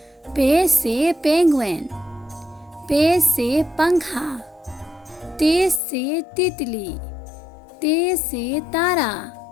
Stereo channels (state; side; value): drops out; right; at 5.8 s